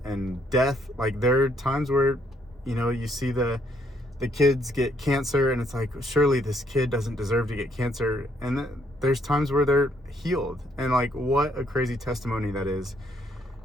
death, like there are times where you see the kids get cancer, and it's like, surely this kid doesn't deserve to get cancer, and there's times where they're healed, and like, what a crazy testimony that is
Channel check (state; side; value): normal; both; correlation 0.70